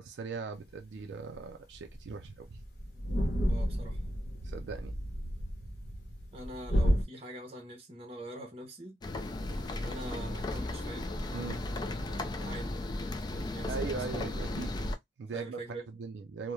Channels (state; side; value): normal; both; correlation 0.80